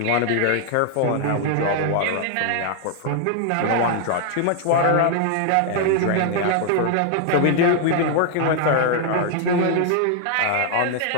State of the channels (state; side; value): different; both; correlation 0.00